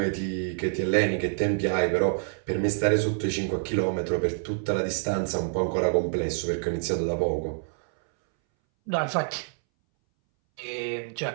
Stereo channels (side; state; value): left; silent; 60 dB below the other